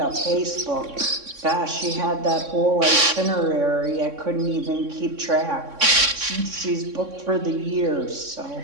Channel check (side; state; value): left; late; 3.6 ms